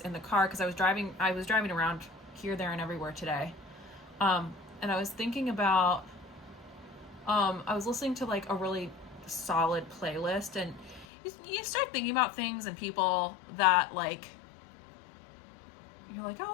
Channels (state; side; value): drops out; right; at 11.1 s